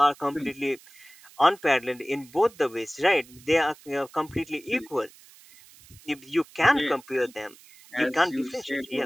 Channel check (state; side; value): noise; right; hiss, 24 dB below the sound